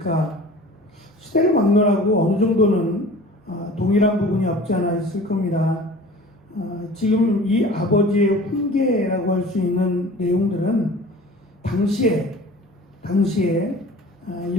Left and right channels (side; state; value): both; normal; correlation 0.43